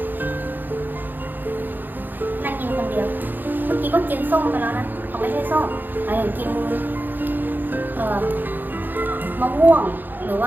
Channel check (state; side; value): late; left; 0.089 ms